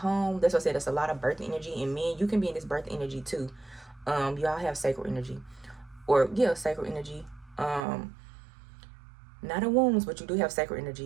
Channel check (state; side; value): drops out; left; at 7.8 s